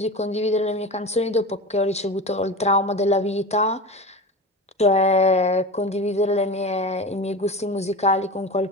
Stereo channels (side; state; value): both; normal; correlation 0.28